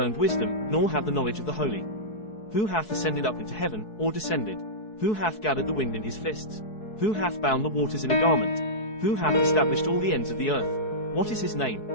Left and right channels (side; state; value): right; late; 4.7 ms